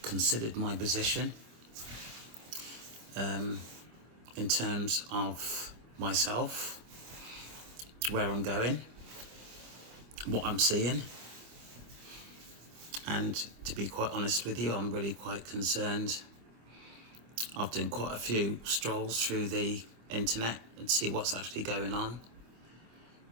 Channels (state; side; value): late; left; 26 ms